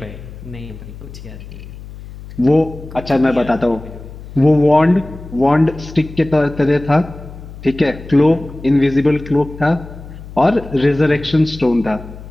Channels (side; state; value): left; noise; hum, 15 dB below the sound